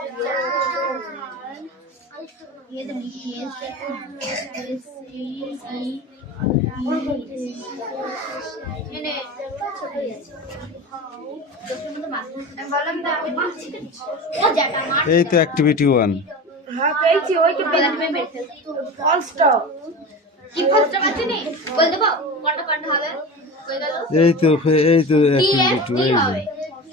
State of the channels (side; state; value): both; normal; correlation 0.30